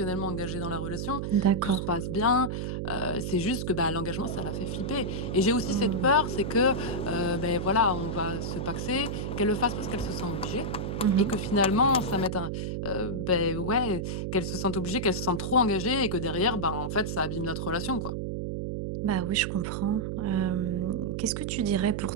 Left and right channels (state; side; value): noise; right; hum, 3 dB below the sound